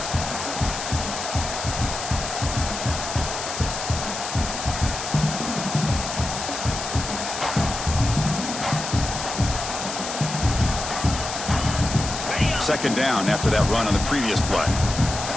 Second down after that run on the previous play.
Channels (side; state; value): left; noise; hiss, 6 dB below the sound